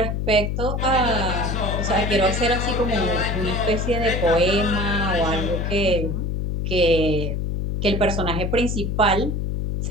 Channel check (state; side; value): noise; left; hum, 1 dB below the sound